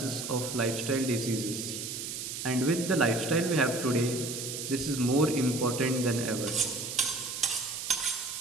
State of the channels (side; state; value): right; noise; hiss, 6 dB below the sound